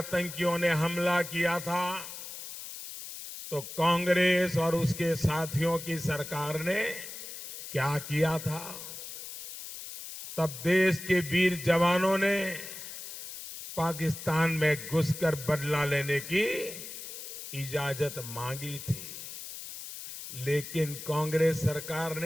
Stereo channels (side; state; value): left; noise; hiss, 10 dB below the sound